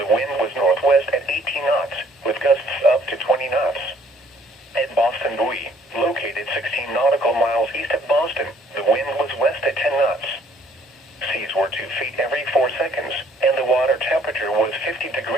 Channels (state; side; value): normal; both; correlation 0.61